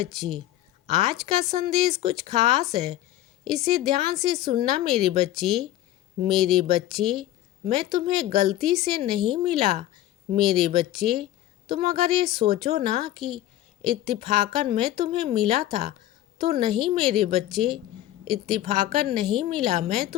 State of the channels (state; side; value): quieter; right; 13.9 dB